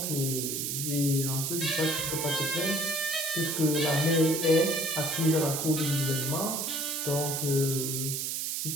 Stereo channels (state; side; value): noise; right; hiss, 1 dB below the sound